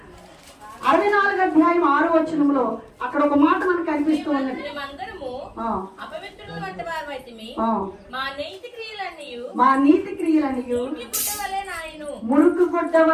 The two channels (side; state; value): both; identical; correlation 1.00